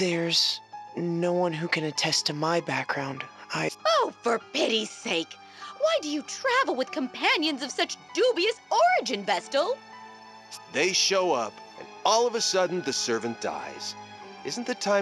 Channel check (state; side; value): identical; both; correlation 1.00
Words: no one who can attest to my background. Oh, for pity's sake! Why do you travel with companions of such dubious origin, Vestal? They show up, and all of a sudden the servant dies. Isn't the